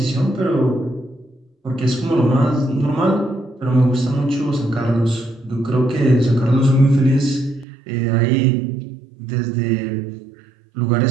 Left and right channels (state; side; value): drops out; left; at 7.7 s